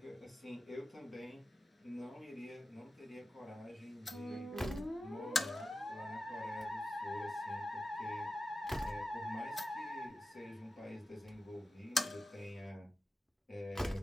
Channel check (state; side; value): normal; both; correlation 0.92